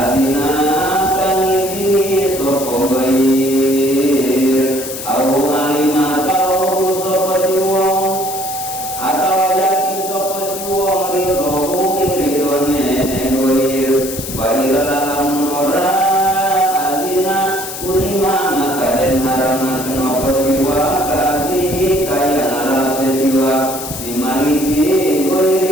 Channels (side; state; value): left; noise; hiss, 8 dB below the sound